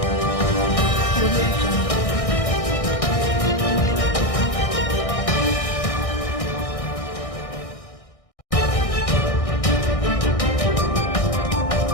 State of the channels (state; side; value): late; right; 1.6 ms